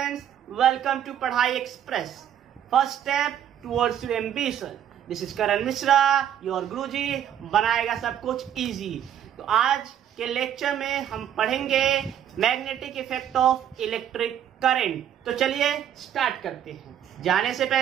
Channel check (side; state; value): left; quieter; 10.0 dB